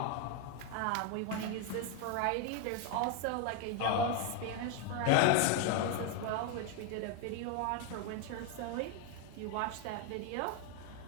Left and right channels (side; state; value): both; different; correlation 0.01